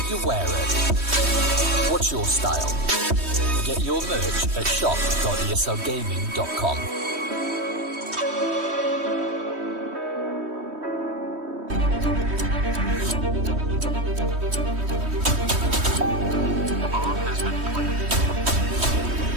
you wear it. What's your style? Get your merch at shop.eslgaming.com.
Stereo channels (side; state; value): left; late; 3.2 ms